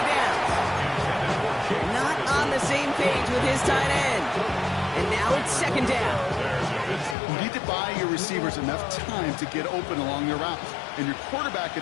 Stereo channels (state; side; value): drops out; right; at 7.2 s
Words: downs. Not on the same page with his tight end. And now it's 2nd down. You need to buy your receivers enough time to get open along their route, and your quarterback